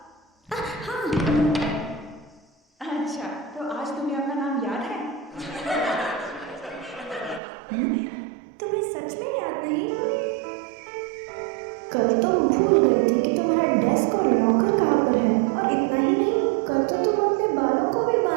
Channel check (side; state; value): left; drops out; at 7.4 s